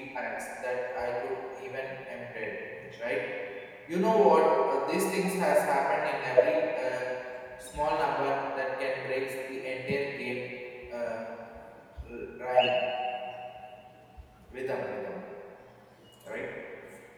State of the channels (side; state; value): both; identical; correlation 1.00